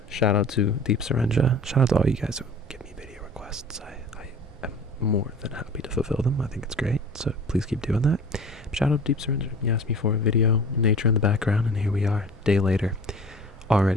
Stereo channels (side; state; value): both; normal; correlation 0.43